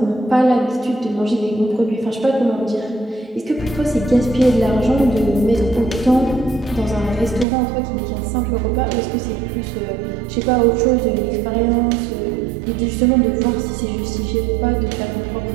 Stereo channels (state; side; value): drops out; left; at 7.5 s